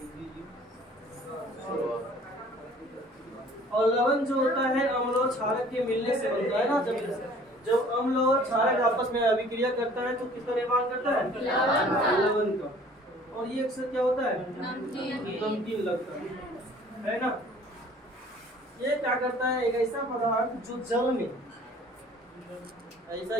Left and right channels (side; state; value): both; normal; correlation 0.52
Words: और लवण जो होता है अम्ल और क्षारक के मिलने से बनता है ना। जब अम्ल और क्षारक आपस में अभिक्रिया करता है तो किसका निर्माण करता है? लवण का। और ये अक्सर क्या होता है? नमकीन लगता है ना। ये क्या करता है? एक ऐसा पदार्थ जो जल में, ऐसा